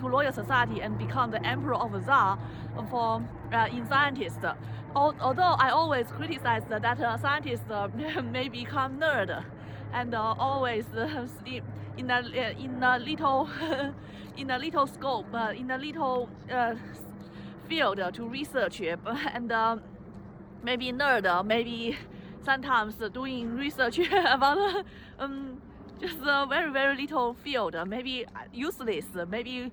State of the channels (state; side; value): identical; both; correlation 1.00